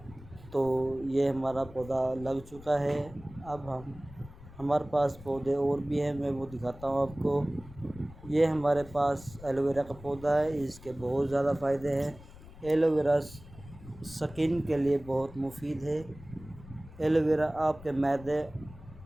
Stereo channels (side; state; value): left; noise; rumble, 18 dB below the sound